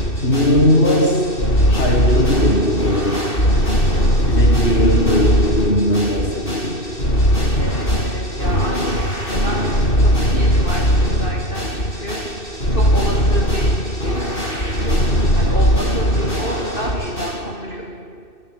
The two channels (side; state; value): right; late; 2.6 ms